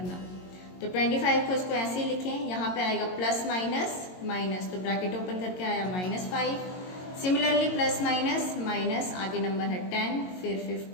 तो 25 को इसको ऐसे ही लिखें, यहाँ पे आएगा प्लस माइनस माइनस, तो ब्रैकेट ओपन करके आया -5। सिमिलरली प्लस माइनस माइनस, आगे नंबर है 10, फिर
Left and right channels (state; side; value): late; right; 22 ms